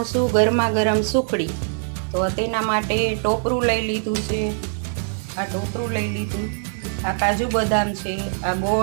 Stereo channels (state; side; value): silent; left; digital silence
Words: ગરમા ગરમ સુખડી। તો તેના માટે ટોપરું લઈ લીધું છે, આ ટોપરું લઈ લીધું, આ કાજુ બદામ છે, આ